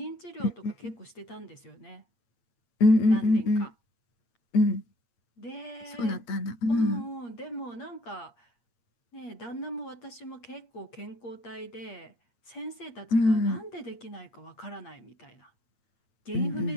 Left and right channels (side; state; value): right; late; 8.5 ms